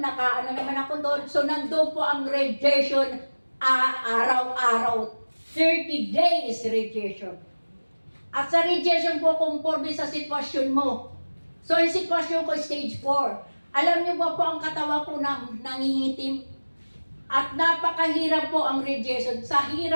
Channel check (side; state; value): both; inverted; correlation -1.00